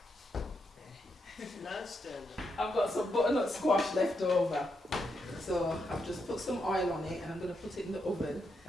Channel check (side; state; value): both; normal; correlation 0.82